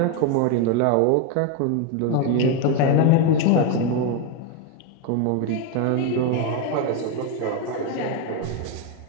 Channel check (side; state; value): both; different; correlation 0.02